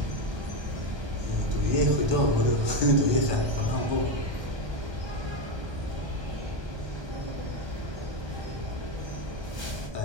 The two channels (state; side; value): late; left; 1.2 ms